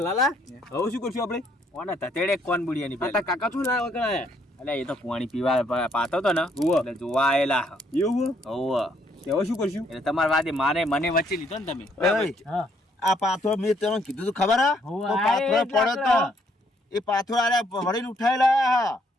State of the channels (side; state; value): both; normal; correlation 0.69